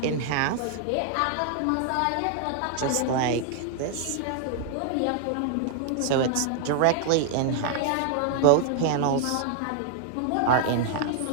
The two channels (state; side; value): different; both; correlation 0.00